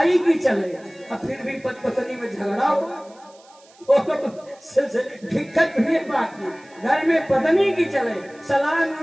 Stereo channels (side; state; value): right; noise; hiss, 28 dB below the sound